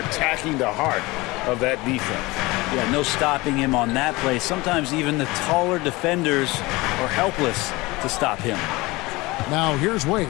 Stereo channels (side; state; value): right; quieter; 22.2 dB